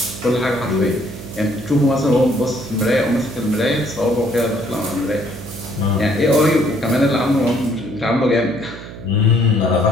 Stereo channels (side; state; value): right; noise; hum, 13 dB below the sound